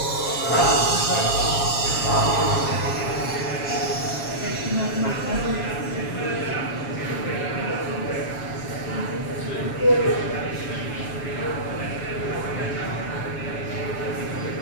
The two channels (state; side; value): late; right; 7.4 ms